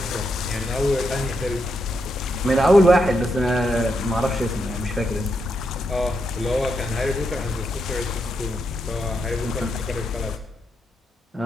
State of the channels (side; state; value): both; normal; correlation 0.82